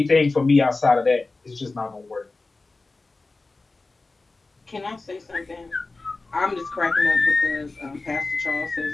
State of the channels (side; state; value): right; quieter; 3.5 dB